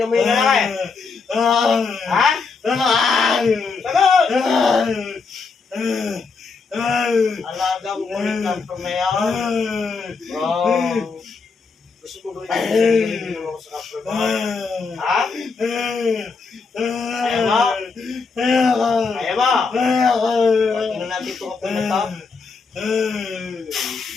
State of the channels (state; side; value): quieter; right; 4.7 dB